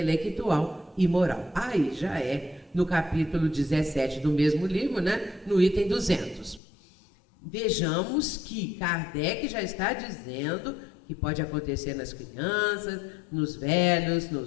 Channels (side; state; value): right; drops out; at 6.6 s